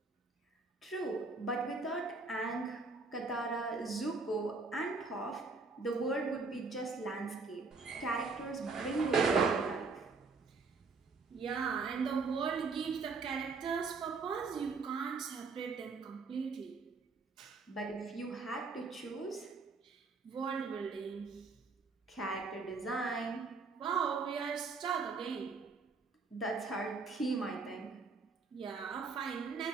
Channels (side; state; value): left; quieter; 4.3 dB